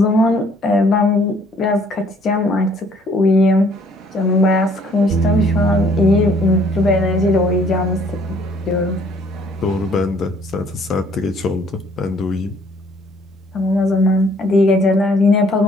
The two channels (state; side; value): normal; both; correlation 0.61